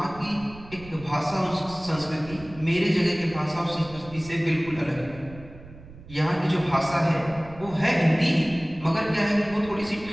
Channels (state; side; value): noise; right; rumble, 18 dB below the sound